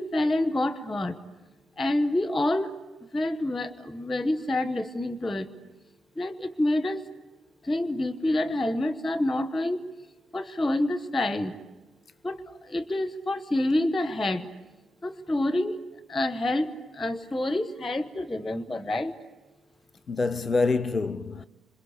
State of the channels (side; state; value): both; normal; correlation 0.93